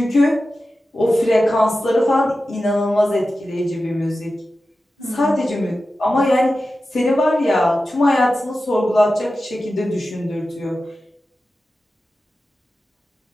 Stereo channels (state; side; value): normal; both; correlation 0.93